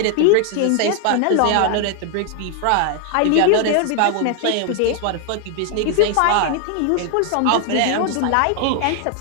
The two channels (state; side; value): different; both; correlation 0.00